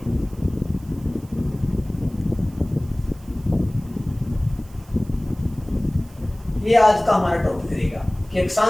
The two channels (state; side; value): noise; right; hiss, 26 dB below the sound